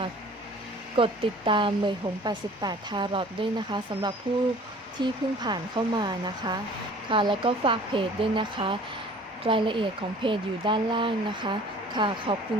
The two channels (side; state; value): both; normal; correlation 0.49